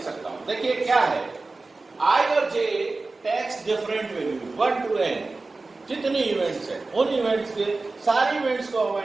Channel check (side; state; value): left; quieter; 3.5 dB